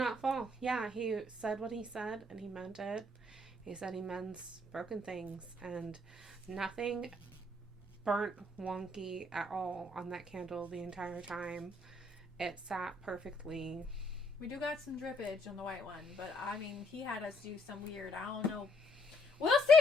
fall. Yeah, he said what he said, and he meant it. He said he mends broken things, and nothing burnt wonky at all on that candle the entire time. It sat perfectly. We do got some drippage on the white one, but I mean, he had us do some weird, I don't know We'll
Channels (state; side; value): normal; both; correlation 0.69